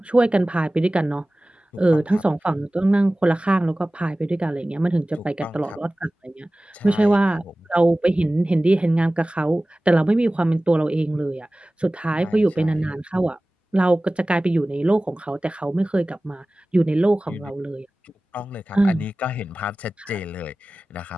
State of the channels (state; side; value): normal; both; correlation 0.97